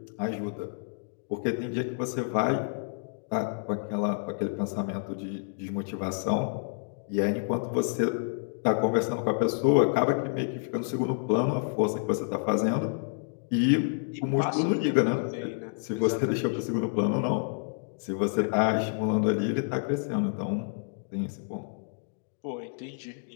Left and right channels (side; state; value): right; silent; digital silence